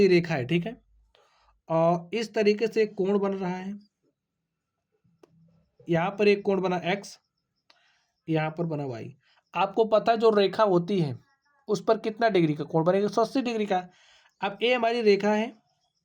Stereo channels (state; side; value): identical; both; correlation 1.00